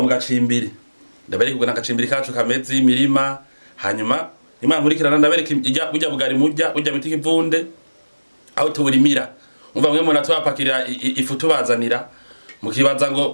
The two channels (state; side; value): inverted; both; correlation -1.00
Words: mu gacimbiri. Ndabereka uko nagacimbiri kacu kameze imirima. Hanyuma Imana nkurikirana ndabereka burya bugari murya burya biti kivunde aho tuburimira. Umva mwe mona twapakira ifu tubazanira mukibaza